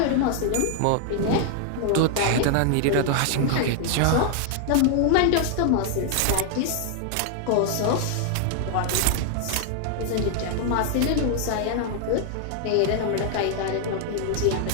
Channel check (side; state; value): both; different; correlation 0.00